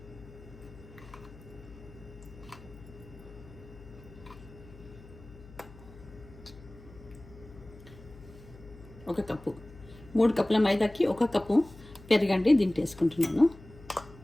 ఒక కప్పు, 3 కప్పుల మైదాకి 1 కప్పు పెరుగండి దీంట్లో వేసుకుంటున్నాను.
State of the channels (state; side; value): noise; left; hum, 19 dB below the sound